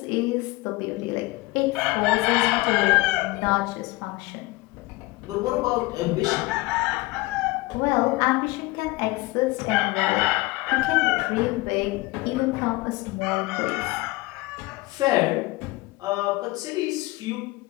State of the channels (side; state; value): right; quieter; 21.3 dB